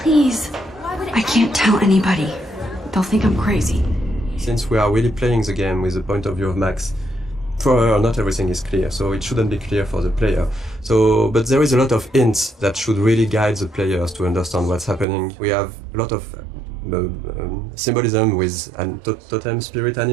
I can't tell anybody. They'll think I'm crazy. Since we are really playing the game with the point of view of Max, for her not everything is clear, so it shouldn't be clear for the player. But there is a lot of hints that should really guide the players to understand what's happening. We have a lot of symbolism with totem spirit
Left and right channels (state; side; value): drops out; left; at 15.1 s